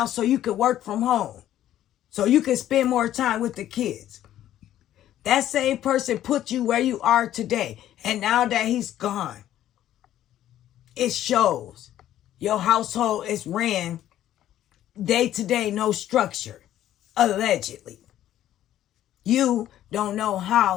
so you could work from home, so you can spend more time with the kids. That same person put you where you are today. And now that he's gone, it shows. Your household is ran day to day, no structure, allegedly. You don't know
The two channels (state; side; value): quieter; right; 12.3 dB